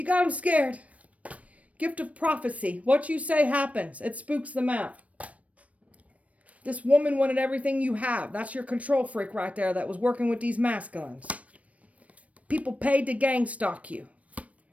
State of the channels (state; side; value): late; left; 0.066 ms